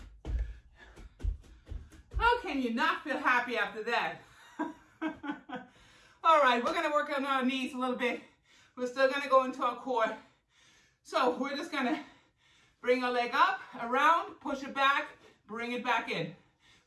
How can you not feel happy after that? All right, we're gonna work on our knees a little bit. We're still gonna go into our core. So we're just gonna bring our leg up, around, push it back, bring it back in.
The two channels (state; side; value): identical; both; correlation 1.00